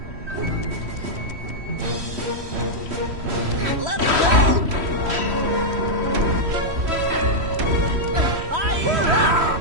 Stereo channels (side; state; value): left; late; 3.1 ms